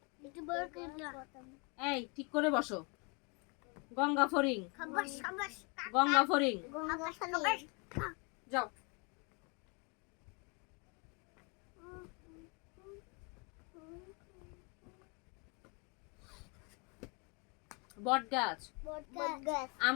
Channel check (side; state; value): right; quieter; 31.7 dB